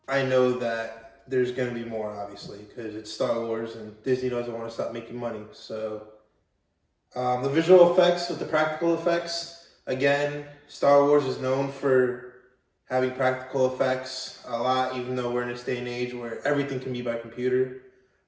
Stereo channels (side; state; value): both; identical; correlation 1.00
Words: I know that there's going to be more, obviously, because it's Star Wars and Disney doesn't want to stop making money. So the visual effects with the practical effects, again, Star Wars is known for having practical effects a lot, even though we're in this day and age where everything can be by computer.